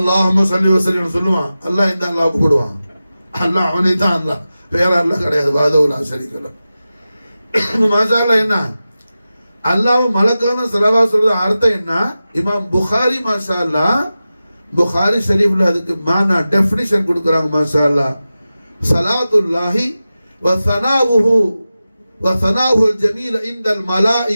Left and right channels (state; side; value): inverted; both; correlation -0.94